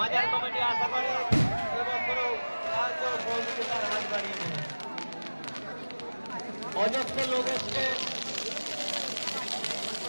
কমিটি আশা করে এবছরও সহযোগিতার হাত বাড়িয়ে দেবে। অজস্র লোক এসছে।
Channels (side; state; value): both; inverted; correlation -1.00